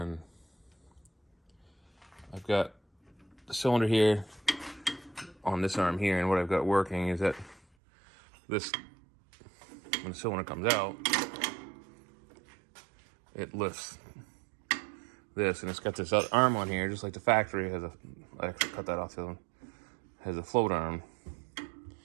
I've got the cylinder here on this arm here, and what I've got working is that this, when the cylinder comes out, it lifts this, and it's got this other arm on here, just like the factory has I actually cut that off the other one, has a float arm.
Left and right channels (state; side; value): drops out; left; at 7.6 s